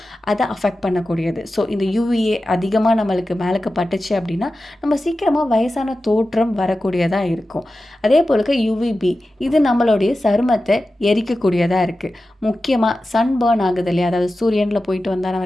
அதை அஃபெக்ட் பண்ணக்கூடியது. ஸோ இந்த யூவிஏ அதிகமாக நம்மளுக்கு மேலுக்கு பட்டுச்சு அப்படின்னா நம்ம சீக்கிரமாக வயசான தோற்றம் வரக்கூடியதாக இருக்கும். அதே போலுக்கு யூவிபி, இது நம்மளுடைய சருமத்தை எரிக்கக்கூடியதாக இருக்குது. முக்கியமாக சன் பர்ன் ஆகுது இல்லையா, அதாவது சூரியனில் போயிட்டு வந்தால்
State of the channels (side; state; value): both; normal; correlation 0.94